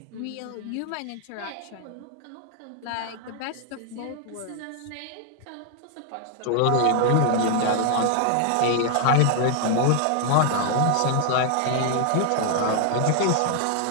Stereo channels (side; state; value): both; different; correlation 0.00